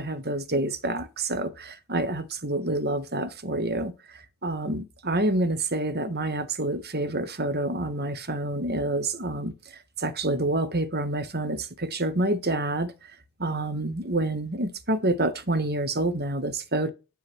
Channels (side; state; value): both; normal; correlation 0.21